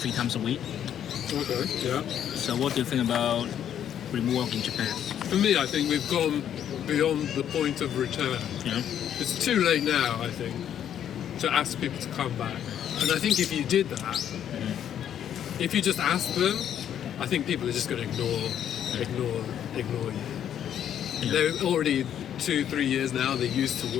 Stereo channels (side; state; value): right; quieter; 9.8 dB